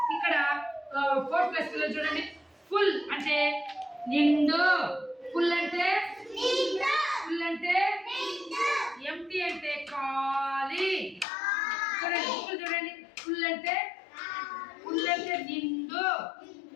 ఇక్కడ 4+ పిల్లలు చూడండి. ఫుల్ అంటే నిండు, ఫుల్ అంటే ఎంటీ అంటే ఖాళీ. చూడండి బుక్లు చూడండి, ఫుల్ అంటే నిండు.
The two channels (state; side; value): drops out; right; at 11.2 s